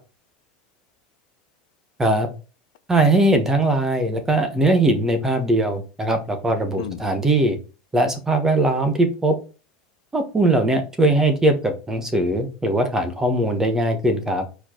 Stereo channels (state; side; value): normal; both; correlation 0.48